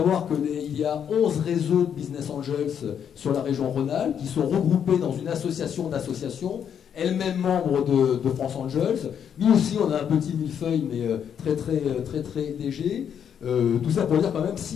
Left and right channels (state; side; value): quieter; right; 8.3 dB